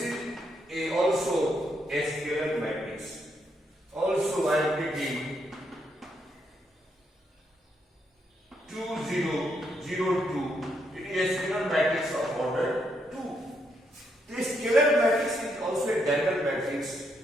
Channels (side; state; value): both; normal; correlation 0.77